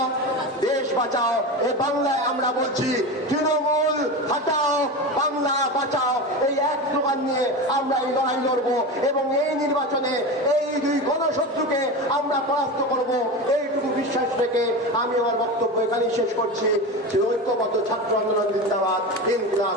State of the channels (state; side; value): normal; both; correlation 0.24